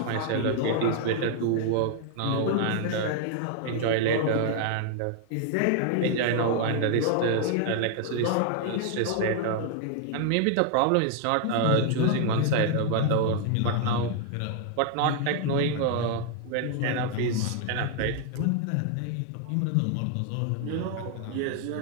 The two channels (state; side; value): different; both; correlation 0.00